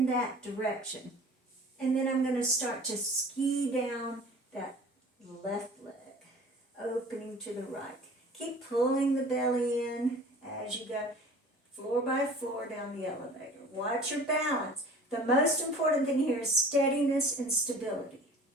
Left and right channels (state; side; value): normal; both; correlation 0.44